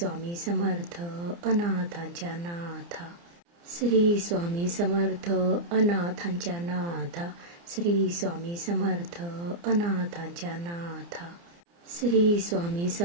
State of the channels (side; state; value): left; late; 29 ms